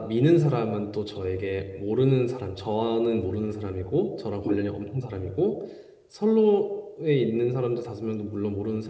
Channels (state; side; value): identical; both; correlation 1.00